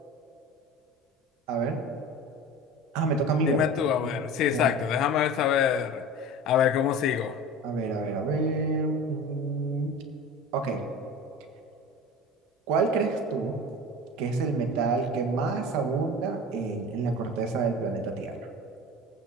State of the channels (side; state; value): both; normal; correlation 0.34